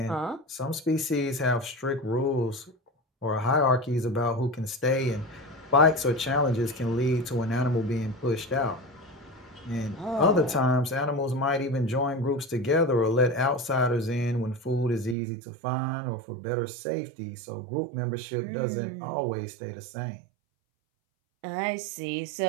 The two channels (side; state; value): left; drops out; at 15.2 s